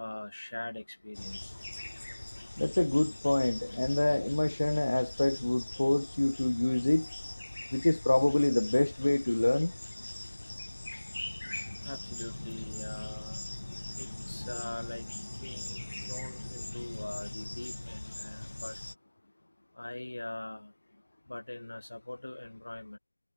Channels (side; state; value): both; inverted; correlation -1.00